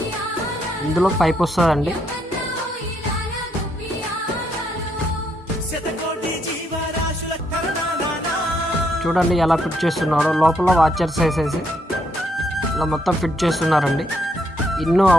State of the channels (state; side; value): normal; both; correlation 0.74